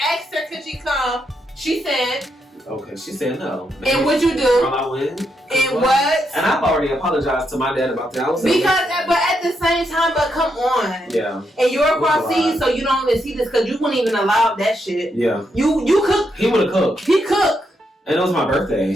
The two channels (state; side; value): normal; both; correlation 0.80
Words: her could she come. She said. Okay, she said no. And what you do? I win. And what? And I've already apologized to my dad about that. But at the same time, but come on. Yeah. And you're across seas, so you don't even see this because you wouldn't even allow that shit. Yeah. You cook. He would have cooked. He cooked. And it was my birthday.